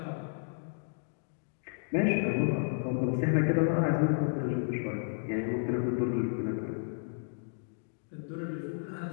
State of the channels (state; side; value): silent; right; digital silence